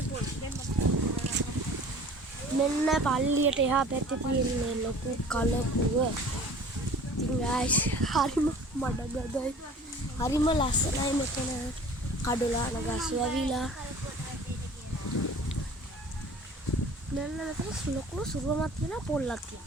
මෙන්න පල්ලියට එහා පැත්තේ තියෙන්නේ ලොකු කලපුව. ඉතින් guys හරිම මඩගදයි. හරිම ලස්සනයි මෙතන. කඩොලාන ගස් වැවිලා. මෙන්න මෙතන ලොකු සුරුවමක් තියෙනවා පොල්ලක්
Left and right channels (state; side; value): normal; both; correlation 0.46